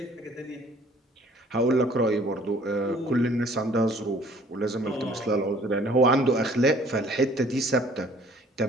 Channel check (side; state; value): both; normal; correlation 0.55